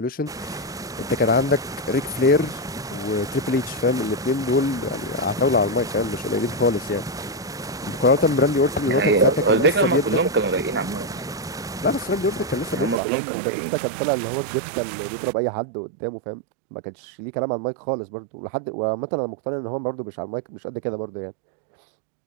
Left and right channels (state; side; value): drops out; left; at 13.0 s